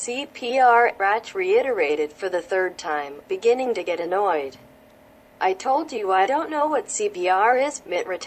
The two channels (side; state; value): both; identical; correlation 1.00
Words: Bratch reiterated for the third time, beginning to get annoyed. I told you I don't know what CPR is, Mitt